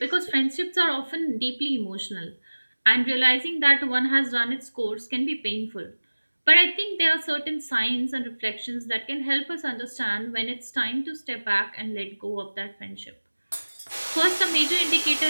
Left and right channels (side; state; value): both; inverted; correlation -1.00